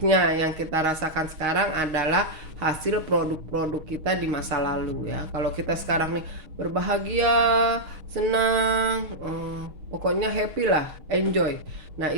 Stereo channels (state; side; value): late; left; 6.4 ms